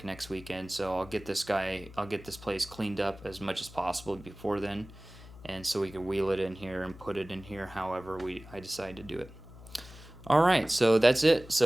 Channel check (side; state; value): left; noise; hum, 18 dB below the sound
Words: next weekend. So I'll get this place cleaned up as much as possible before then, and so we can wheel it in here and put it in here however I decide to do it. Alright, so that's it.